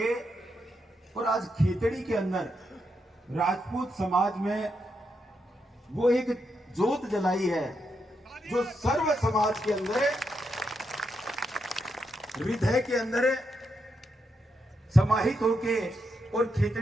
और आज खेतड़ी के अंदर राजपूत समाज में वो एक जोत जलाई है जो सर्व समाज के अंदर, हृदय के अंदर समाहित होके और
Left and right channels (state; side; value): normal; both; correlation 0.82